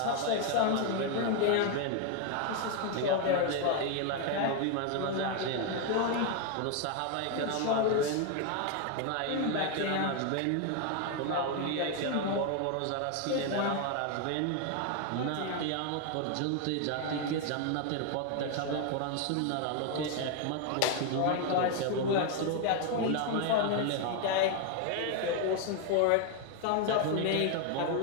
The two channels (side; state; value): both; different; correlation 0.01